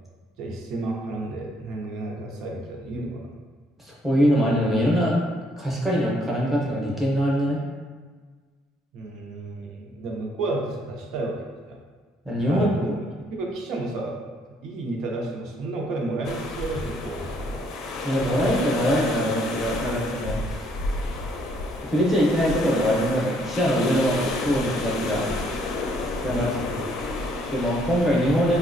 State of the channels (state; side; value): normal; both; correlation 0.68